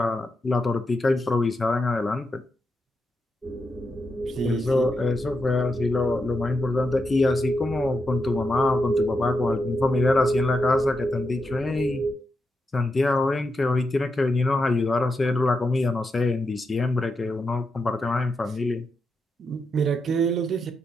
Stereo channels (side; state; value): both; normal; correlation 0.85